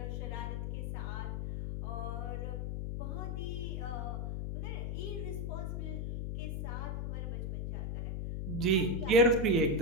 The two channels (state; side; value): noise; left; hum, 2 dB below the sound